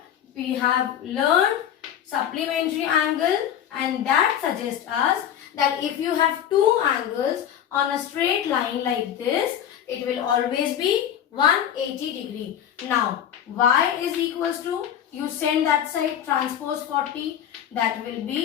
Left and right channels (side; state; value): right; quieter; 9.9 dB